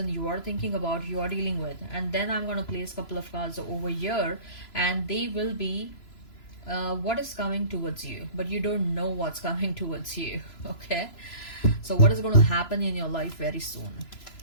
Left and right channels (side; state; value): right; late; 3.0 ms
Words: you are thinking about, you are dealing with. And then I'm going to place a couple of cards over here and they will be what is coming towards you, but you don't know what's coming towards you. Okay, so what is going to happen in your life very soon.